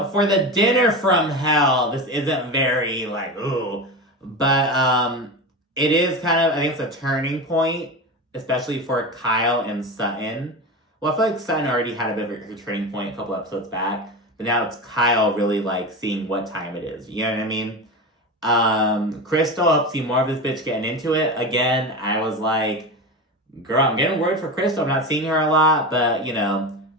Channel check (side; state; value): both; normal; correlation 0.23